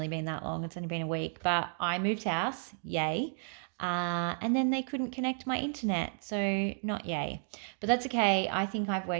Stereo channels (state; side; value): silent; left; 56 dB below the other